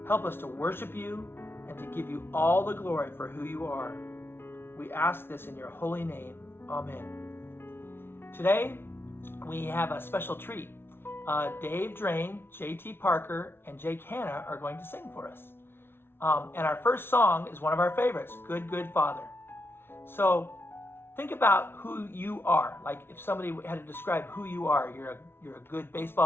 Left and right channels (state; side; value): late; right; 0.11 ms